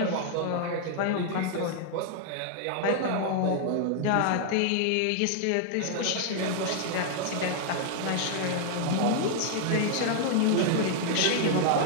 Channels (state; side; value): different; both; correlation 0.00